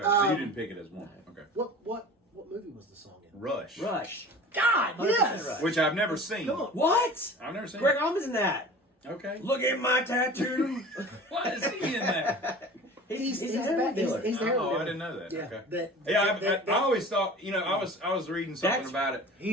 so you didn't pick it as one. Okay. What movie was the song in? Rush. God, 100% yes. Rush. Which I've never seen. Come on. What? I've never seen Greg it. Allman's in that. Okay. Look at my tattoo. Why is he in that? He's the the heroin dealer. He's the heroin Oh, dealer. I didn't know that. Yeah. Okay. I always thought, I was reading something about it.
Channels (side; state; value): both; normal; correlation 0.40